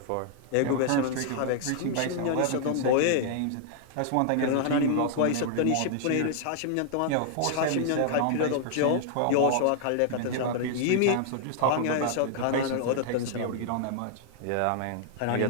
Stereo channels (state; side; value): different; both; correlation -0.01